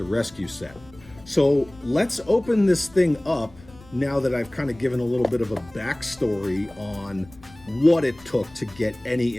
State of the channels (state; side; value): noise; left; rumble, 23 dB below the sound